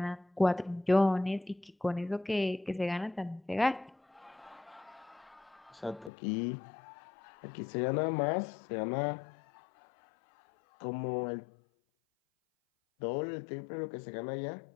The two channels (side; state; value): right; drops out; at 6.1 s